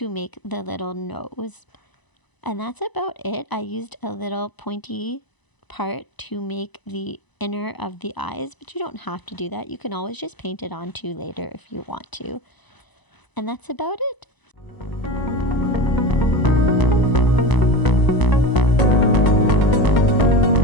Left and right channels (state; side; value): late; right; 1.0 ms